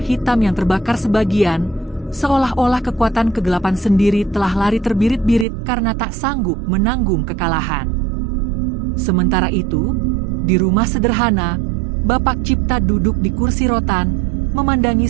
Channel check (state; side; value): drops out; left; at 5.5 s